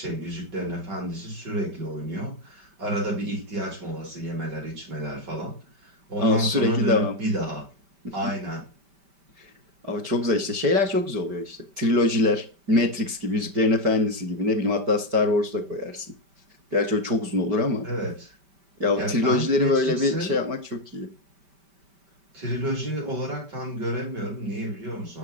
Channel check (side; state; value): left; late; 5.1 ms